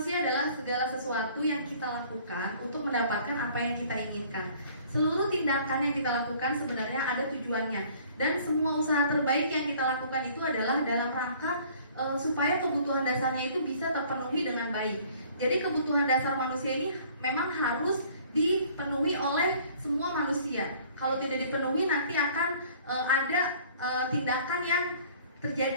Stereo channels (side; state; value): both; inverted; correlation -0.54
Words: adalah segala sesuatu yang kita lakukan untuk mendapatkan apa yang kita inginkan. Seluruh tindakan yang kita lakukan sebenarnya ada tujuannya. Dan semua usaha terbaik yang kita lakukan itu adalah dalam rangka supaya kebutuhan dasarnya itu bisa terpenuhi dengan baik. Jadi kebutuhan dasar manusia ini memang harus dipenuhi oleh semua manusia. Kalau tidak dipenuhi nanti akan ada tindakan yang